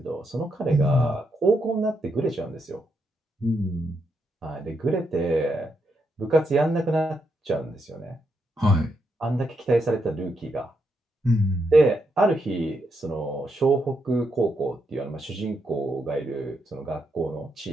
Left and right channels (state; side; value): normal; both; correlation 0.81